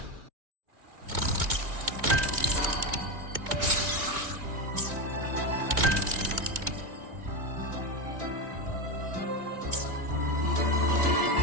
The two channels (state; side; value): late; left; 2.3 ms